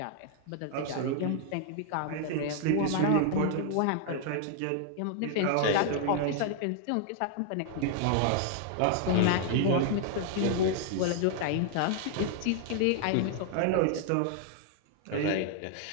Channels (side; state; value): both; different; correlation 0.00